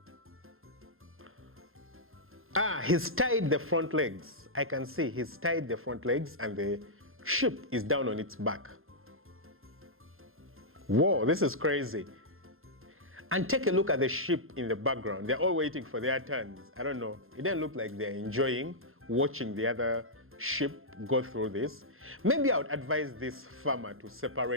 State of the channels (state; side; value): late; left; 0.61 ms